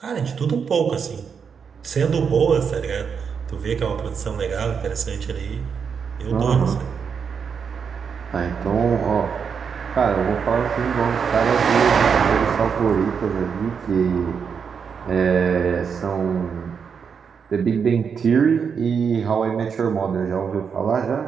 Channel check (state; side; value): quieter; left; 6.5 dB